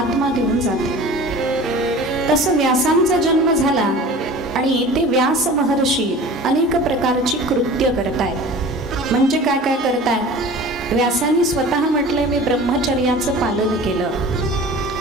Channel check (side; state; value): both; normal; correlation 0.40